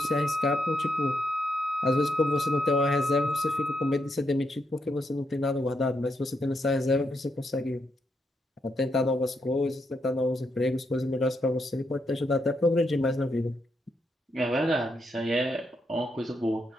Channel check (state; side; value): normal; both; correlation 0.80